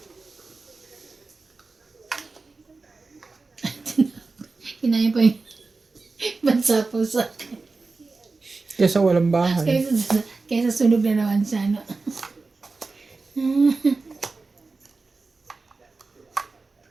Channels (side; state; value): left; quieter; 3.9 dB